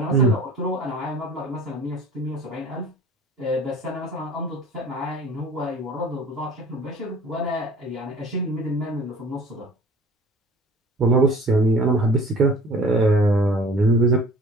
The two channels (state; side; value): normal; both; correlation 0.46